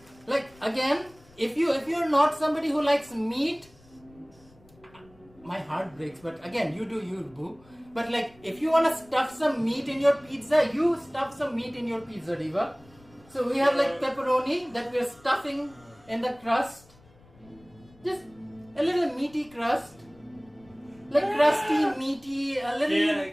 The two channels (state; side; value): noise; left; rumble, 27 dB below the sound